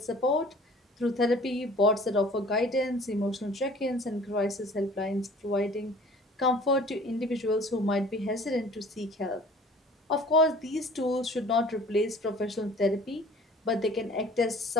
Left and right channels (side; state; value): both; normal; correlation 0.49